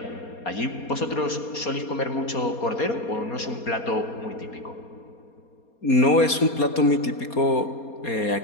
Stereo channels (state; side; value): late; right; 4.2 ms